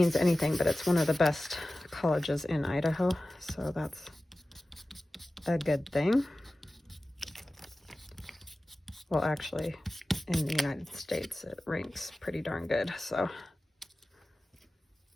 anything, but it's one of the best colleges in Idaho, so that's a good thing. Well, actually, in the United States, it ranks pretty darn good, so.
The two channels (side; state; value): both; normal; correlation 0.96